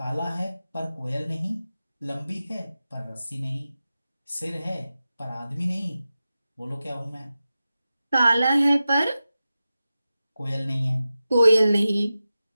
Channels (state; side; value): inverted; both; correlation -0.94